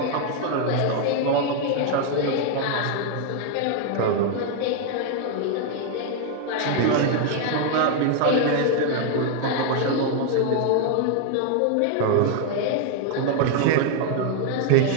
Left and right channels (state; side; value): different; both; correlation 0.00